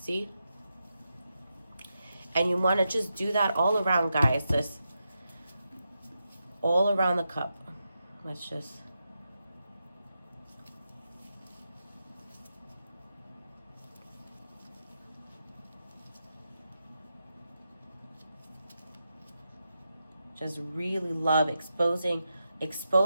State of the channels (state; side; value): inverted; both; correlation -0.87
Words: And you want to just do that all around, guys, just all around the cup. Let's just really love exposing